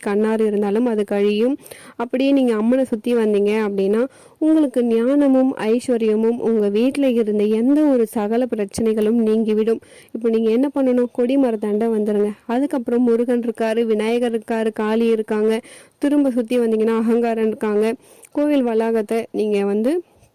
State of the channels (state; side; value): identical; both; correlation 1.00